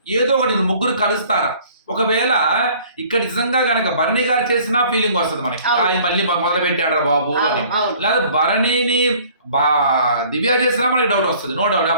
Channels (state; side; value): inverted; both; correlation -0.53